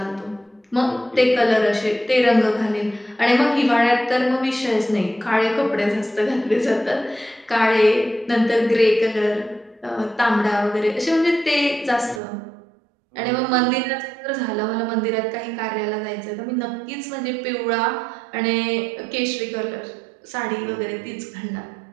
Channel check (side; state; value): left; drops out; at 12.2 s